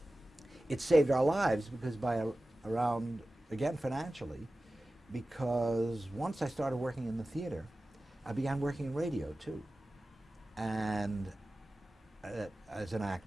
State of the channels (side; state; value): both; normal; correlation 0.96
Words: it saved our lives because around, again, financially, because once I started working in the theater, I began working in radio too. And as an